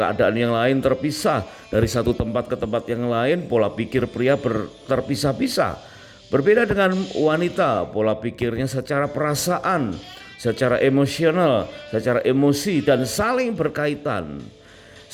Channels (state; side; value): identical; both; correlation 1.00